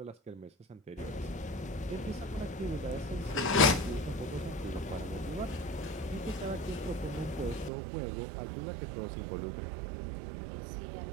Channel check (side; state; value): left; drops out; at 7.7 s